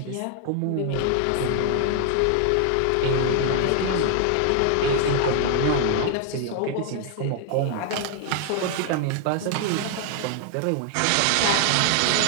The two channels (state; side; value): different; both; correlation 0.00